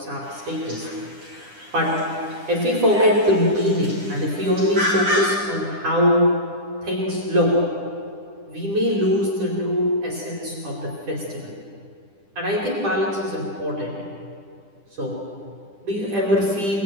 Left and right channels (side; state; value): left; late; 10 ms